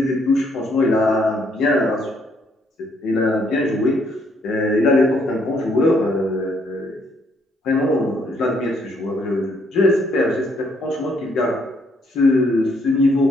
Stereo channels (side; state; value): both; normal; correlation 0.70